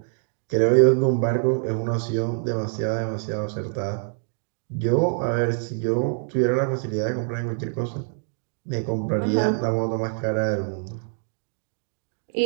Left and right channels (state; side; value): silent; left; 61 dB below the other